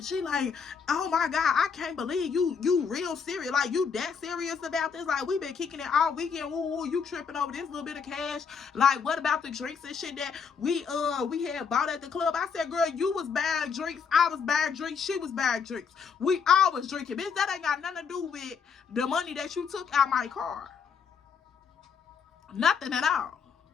she like, oh my God, I can't believe you real serious. Like, you that serious about this? Like, we been kicking it all weekend. Woo, you tripping over this little bit of cash. Like, what about the drinks and shit that we had bought at the club? I said, girl, you was buying drinks, I was buying drinks, she was buying drinks. We all was drinking. Bitch, that ain't got nothing to do with the money that you took out my car. Nothing at all.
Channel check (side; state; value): right; quieter; 6.2 dB